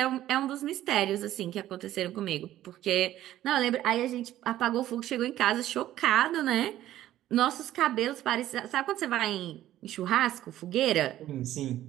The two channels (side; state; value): left; quieter; 13.4 dB